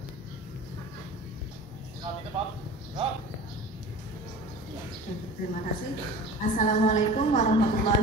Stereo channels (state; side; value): normal; both; correlation 0.38